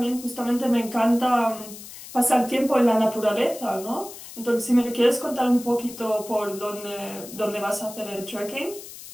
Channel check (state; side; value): noise; left; hiss, 14 dB below the sound